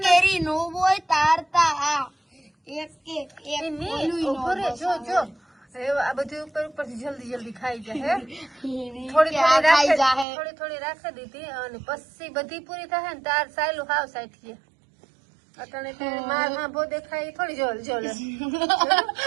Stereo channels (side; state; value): left; drops out; at 10.2 s